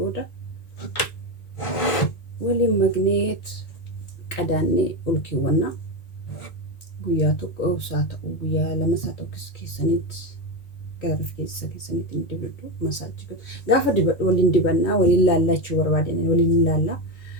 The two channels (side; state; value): right; late; 1.8 ms